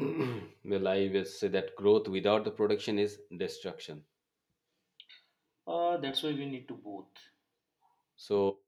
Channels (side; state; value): both; identical; correlation 1.00